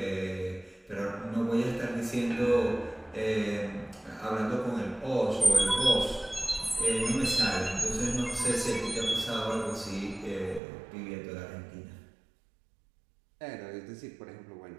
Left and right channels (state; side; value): drops out; left; at 10.6 s